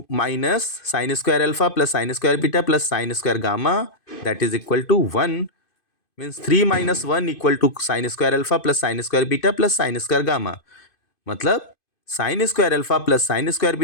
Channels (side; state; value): right; late; 2.5 ms